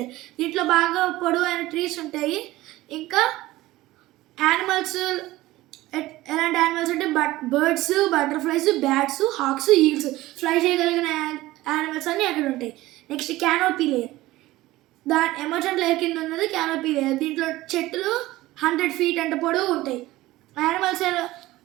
దీంట్లో బాగా పొడవైన ట్రీస్ ఉంటాయి. ఇంకా యానిమల్స్ ఎలాంటి యానిమల్స్ అంటే birds, butterflies, bats, hawks, eagles, fly చేయగలిగిన యానిమల్స్ అన్నీ అక్కడ ఉంటాయి. Next canopy layer. Emergent layer కింద ఉన్నది క్యానోపీ లేయర్. దీంట్లో చెట్లు 100 feet అంత పొడవు ఉంటాయి.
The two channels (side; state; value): left; quieter; 17.5 dB